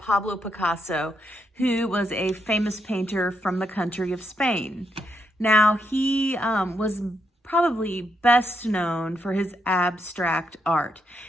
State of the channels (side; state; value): both; normal; correlation 0.79